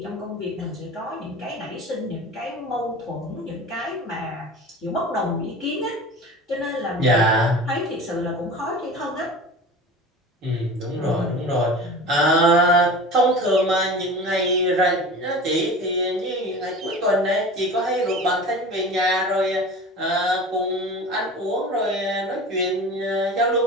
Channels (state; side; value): normal; both; correlation 0.36